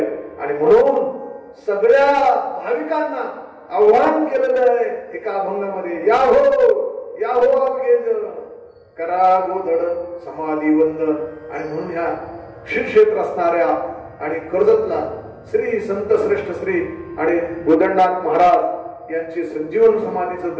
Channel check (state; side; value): identical; both; correlation 1.00